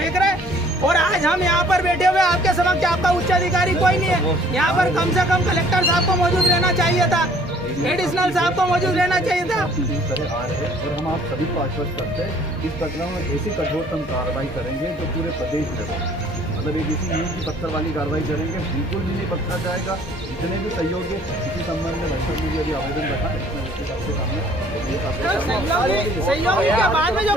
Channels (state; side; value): normal; both; correlation 0.57